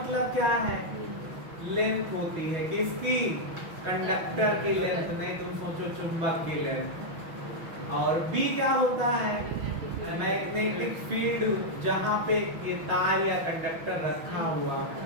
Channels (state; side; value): late; left; 6.2 ms